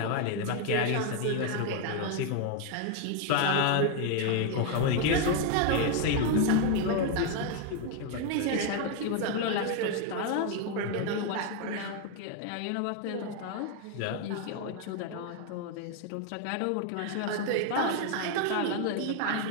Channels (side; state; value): both; different; correlation 0.01